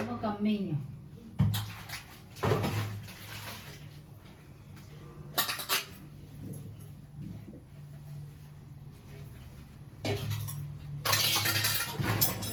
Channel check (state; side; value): identical; both; correlation 1.00